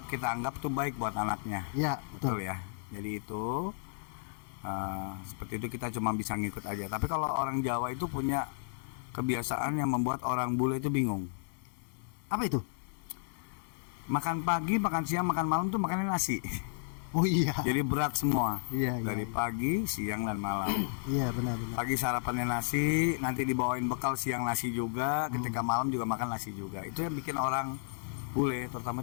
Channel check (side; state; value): right; silent; 56 dB below the other